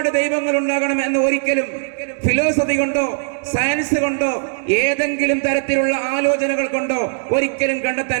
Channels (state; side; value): silent; left; digital silence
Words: ദൈവങ്ങൾ ഉണ്ടാകണം എന്ന് ഒരിക്കലും ഫിലോസഫി കൊണ്ടോ സയൻസ് കൊണ്ടോ ഏതെങ്കിലും തരത്തിലുള്ള ആലോചനകൾ കൊണ്ടോ ഒരിക്കലും